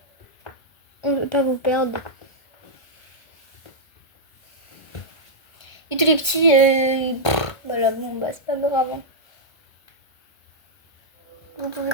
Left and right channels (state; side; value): late; right; 1.7 ms